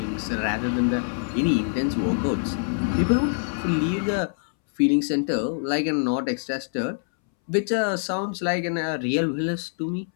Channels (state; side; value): silent; right; 62 dB below the other